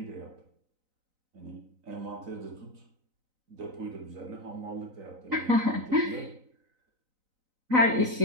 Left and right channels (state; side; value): late; left; 3.9 ms